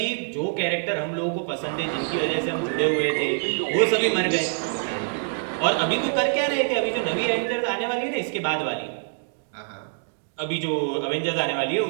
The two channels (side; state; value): left; silent; digital silence